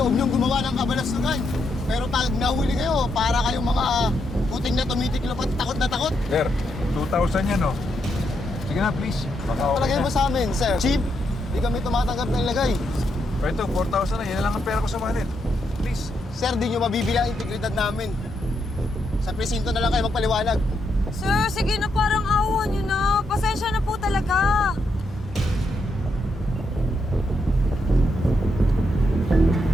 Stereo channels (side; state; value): both; normal; correlation 0.80